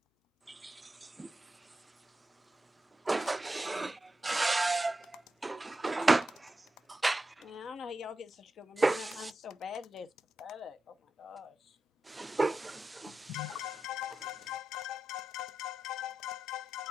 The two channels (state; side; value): normal; both; correlation 0.90